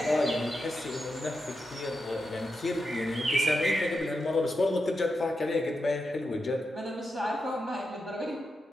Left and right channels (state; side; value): normal; both; correlation 0.87